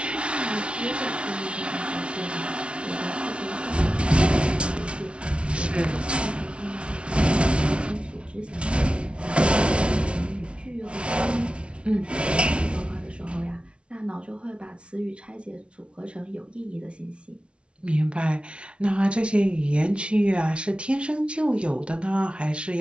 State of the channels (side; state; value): left; late; 0.059 ms